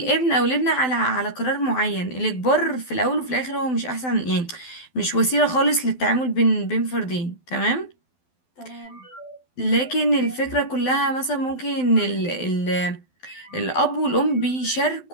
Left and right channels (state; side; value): late; right; 12 ms